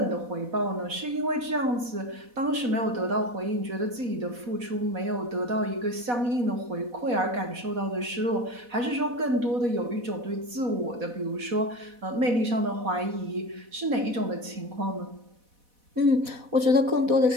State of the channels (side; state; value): left; late; 4.1 ms